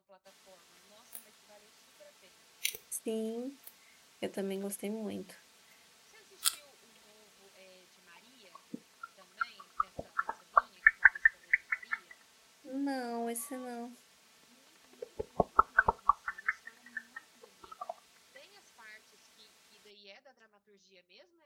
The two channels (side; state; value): both; identical; correlation 1.00